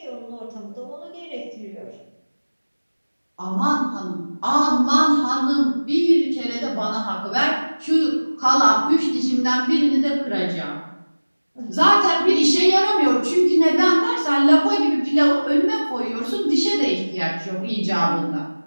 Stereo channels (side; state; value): both; inverted; correlation -1.00